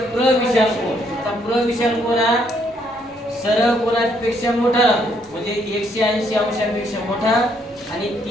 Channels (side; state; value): both; normal; correlation 0.71